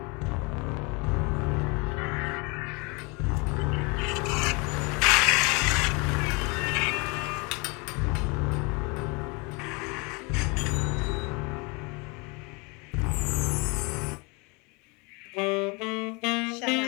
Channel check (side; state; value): right; quieter; 29.4 dB